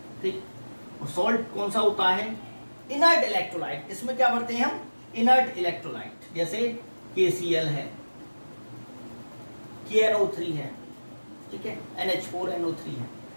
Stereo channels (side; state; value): both; inverted; correlation -1.00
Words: ठीक। और सॉल्ट कौन सा होता है? Inert electrolyte. इसमें क्या भरते हैं हम? इनर्ट इलेक्ट्रोलाइट, जैसे KCl है, KNO3 है, ठीक है, NH4NO3 है,